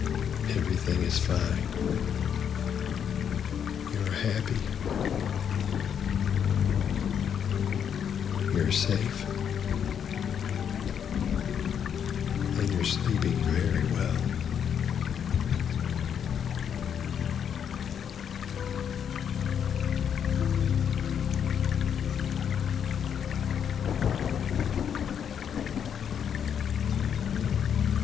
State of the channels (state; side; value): quieter; right; 8.2 dB